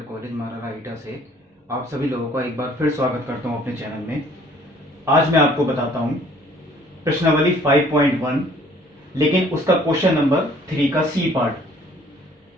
college मारारा ईटा से आप सभी लोगों का एक बार फिर स्वागत करता हूं अपने चैनल में। आज मैं आपको बताता हूं प्रश्नावली 5.1, लेकिन उसका क्वेश्चन नंबर 3 का सी पार्ट।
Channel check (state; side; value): normal; both; correlation 0.57